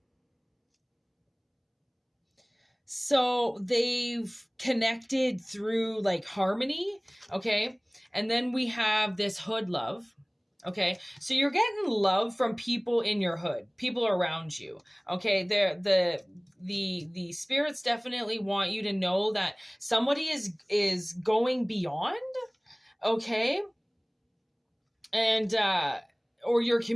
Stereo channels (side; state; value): both; identical; correlation 1.00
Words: So they've connected through like harmony, okay? And then we have this hood love, okay? So you're getting love from people in your hood, people around you, okay? The spirits definitely want you to know that somebody is going beyond, okay? And or your